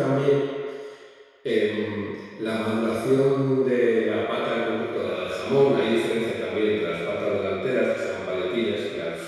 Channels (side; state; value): both; identical; correlation 1.00